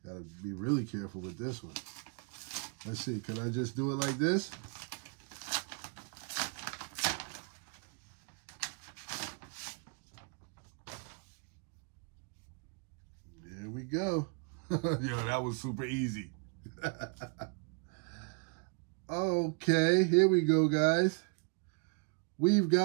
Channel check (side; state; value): left; quieter; 37.6 dB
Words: Gotta be really careful with this one. Let's see, can I just do it like this? There we go. Yo, that was super easy. Okay, here we go, guys. We've